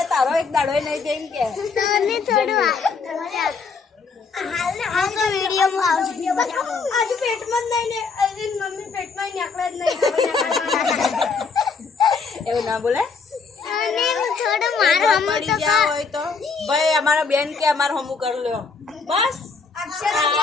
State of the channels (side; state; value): right; quieter; 4.9 dB